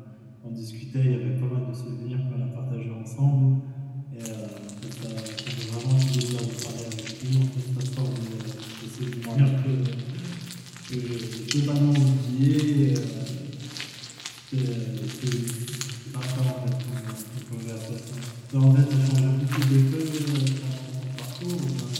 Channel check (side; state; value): both; identical; correlation 1.00